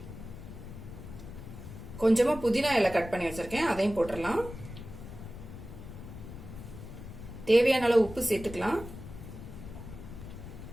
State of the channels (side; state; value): left; noise; rumble, 12 dB below the sound